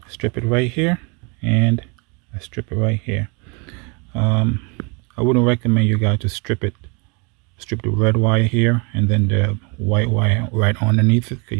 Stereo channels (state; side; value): quieter; left; 32.1 dB